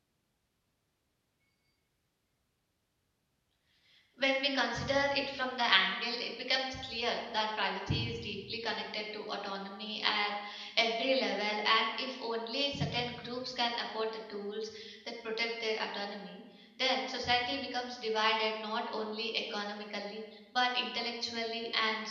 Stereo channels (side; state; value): both; identical; correlation 1.00